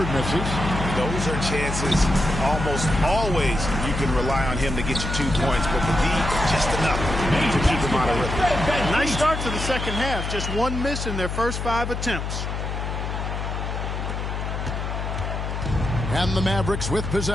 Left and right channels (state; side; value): noise; left; hum, 4 dB below the sound